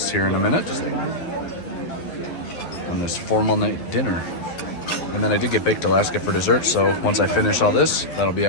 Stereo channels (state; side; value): late; right; 12 ms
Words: here in a minute. On this formal night dinner. And then I did get baked Alaska for dessert, so once I finish all this, that'll be